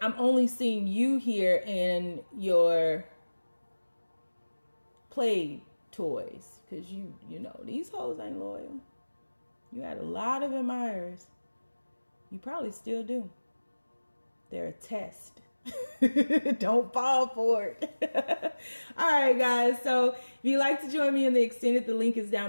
I'm only seeing you here in your play toys, because you know, these hoes ain't loyal. You had a lot of admirers. You probably still do. They're a test. Don't fall for it. All right, guys. So if you'd like to join me in the extended, the link is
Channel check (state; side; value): inverted; both; correlation -1.00